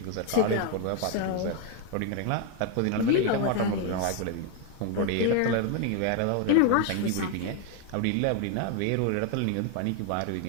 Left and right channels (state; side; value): different; both; correlation 0.01